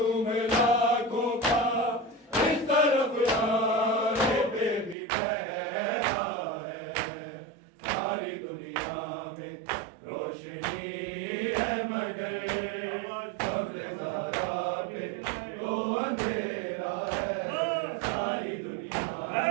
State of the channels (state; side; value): drops out; left; at 5.0 s